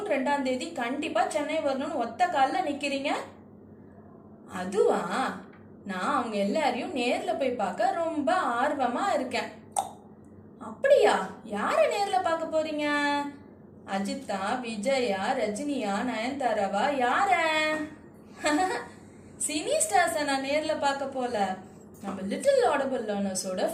2ஆம் தேதி கண்டிப்பா சென்னை வரணும்னு ஒத்த காலில் நிக்கிறீங்க. அதுவா, நான் அவங்க எல்லாரையும் நேர்ல போய் பார்க்க ரொம்ப ஆர்வமா இருக்கேன். அப்படியா? யார நேர்ல பார்க்க போறீங்க? அஜித்தா, விஜயா, ரஜினியா, நயன்தாராவா, யார? சினி ஸ்டார்ஸை நான் நேர்ல பார்க்க போல. நம்ம லிட்டில் ஆடபிள் லேர்னர்ஸோட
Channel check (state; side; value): identical; both; correlation 1.00